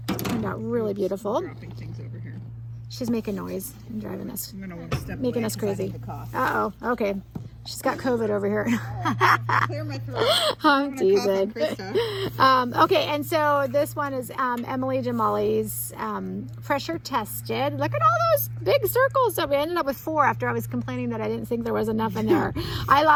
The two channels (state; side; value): identical; both; correlation 1.00